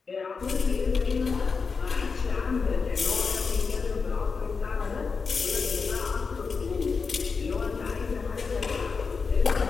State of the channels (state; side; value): quieter; right; 5.0 dB